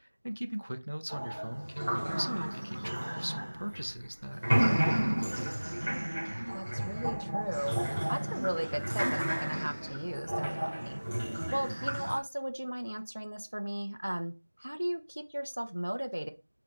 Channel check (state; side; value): inverted; both; correlation -1.00